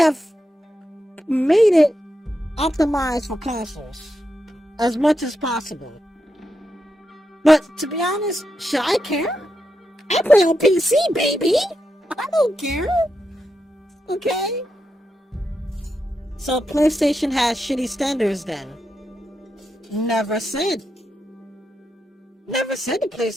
made it optimized for consoles as much as possible. But to be honest, should I care? I play on PC, baby. I don't care. Okay. So PlayStation has shitty standards then. Never said. Never said the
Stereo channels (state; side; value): normal; both; correlation 0.86